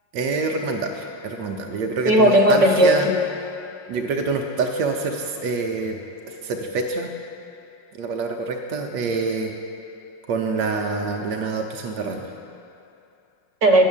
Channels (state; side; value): late; left; 5.5 ms